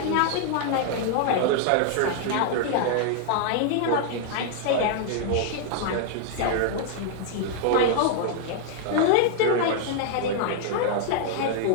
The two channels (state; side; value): different; both; correlation -0.01